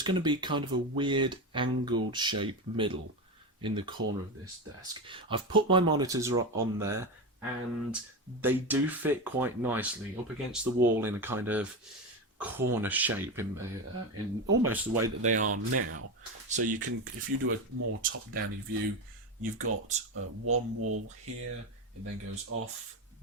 going to be kind of a weird angled shape middle in the corner of this desk. I've put my monitors on there, and they do fit quite nicely up against the wall in a kind of corner shape in almost the way that they are now. So you can, if you do a more top-down view, you've got one wall here, it then goes off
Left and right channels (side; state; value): both; normal; correlation 0.18